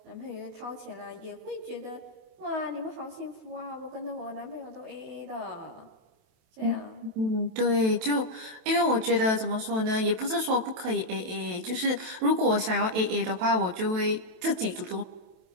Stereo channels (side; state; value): left; late; 27 ms